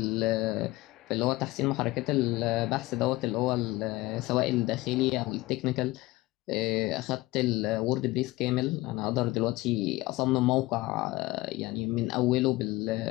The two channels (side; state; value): right; quieter; 19.6 dB